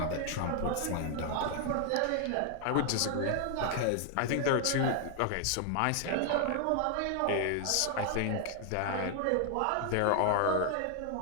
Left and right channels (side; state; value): both; different; correlation 0.00